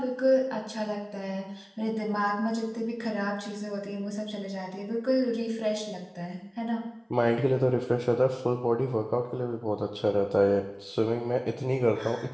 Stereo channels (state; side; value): identical; both; correlation 1.00